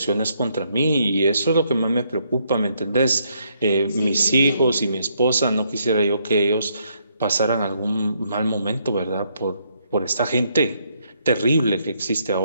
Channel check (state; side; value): inverted; both; correlation -0.74